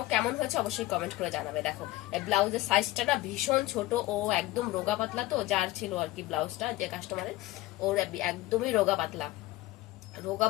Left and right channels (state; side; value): quieter; right; 18.0 dB